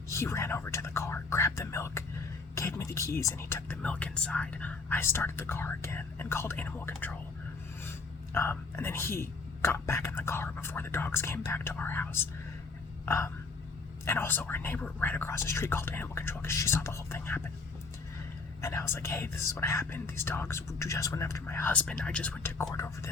He ran over to the car, grabbed the milk, gave me the keys, and he took the milk inside. I started the car again and called animal control. And then he got back in the car before the dogs came back to our house. And also our neighbor right across the street called animal control because she saw the whole thing happen. And I was like, "Hey, this is what happened. These dogs just went after my husband. I just went to court over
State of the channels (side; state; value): right; quieter; 4.1 dB